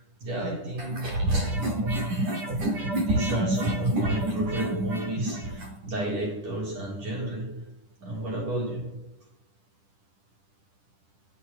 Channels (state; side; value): late; left; 10 ms